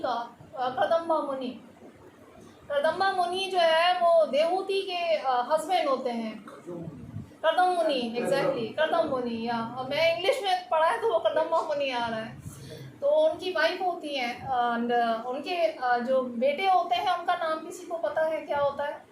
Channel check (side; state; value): both; identical; correlation 1.00